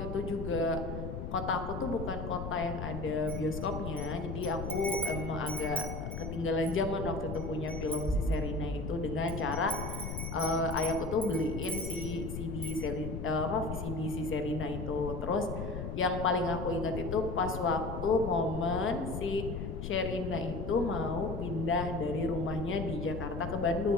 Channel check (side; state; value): left; noise; rumble, 5 dB below the sound